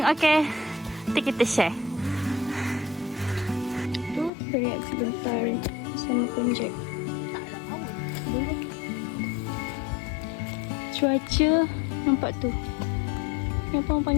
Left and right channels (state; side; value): drops out; right; at 4.3 s